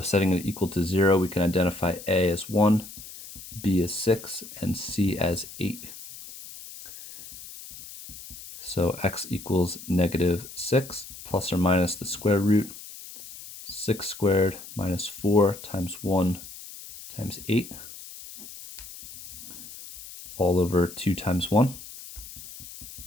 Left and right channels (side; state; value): left; noise; hiss, 14 dB below the sound